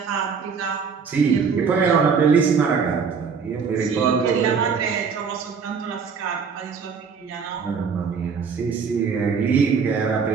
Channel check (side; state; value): left; quieter; 5.9 dB